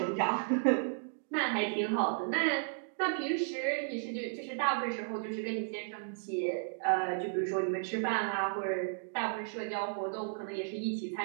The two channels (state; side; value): silent; left; digital silence